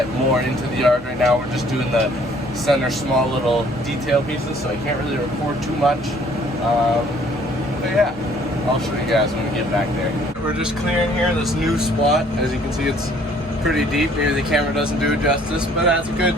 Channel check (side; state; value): both; normal; correlation 0.59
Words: more into the yard. Right now we're just doing the center small little detail pieces, so I can't really record too much. But yeah, I'll show you guys when we get back there. We're just clearing here this new spot. As you can see, it's pretty deep. Maybe the camera doesn't do it justice, but that's a good